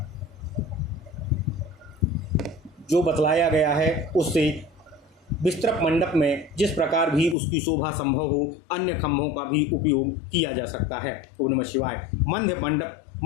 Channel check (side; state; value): right; drops out; at 7.4 s